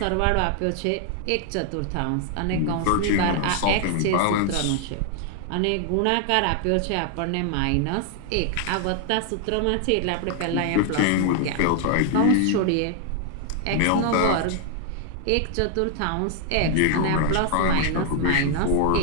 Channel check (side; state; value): both; different; correlation 0.00